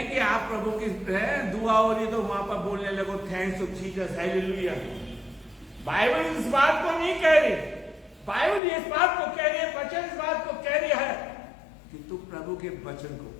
कि आप प्रभु की दुआ हो रही तो वहां पर बोलने लगो thanks to Jesus, hallelujah. Bible इस बात को नहीं कह रही। बाइबल इस बात को कह रही है, वचन इस बात को कह रही है कि तू प्रभु के वचन को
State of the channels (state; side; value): drops out; right; at 8.6 s